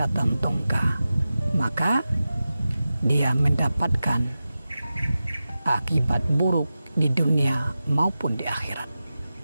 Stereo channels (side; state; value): both; inverted; correlation -0.94